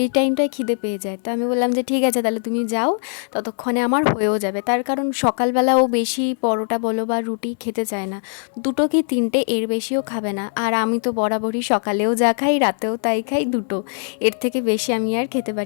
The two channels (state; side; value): silent; right; 64 dB below the other